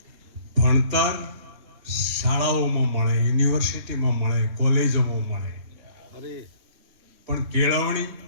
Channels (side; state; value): left; late; 3.7 ms